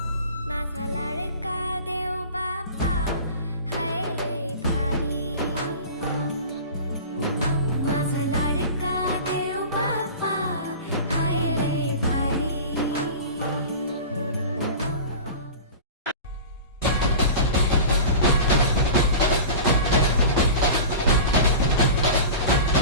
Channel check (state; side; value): inverted; both; correlation -0.35